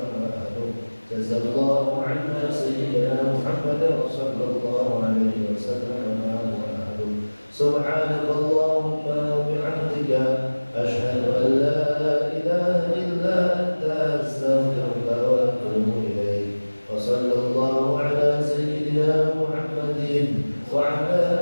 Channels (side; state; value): both; inverted; correlation -1.00